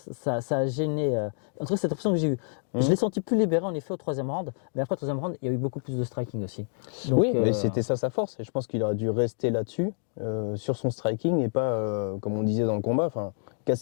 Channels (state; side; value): silent; right; digital silence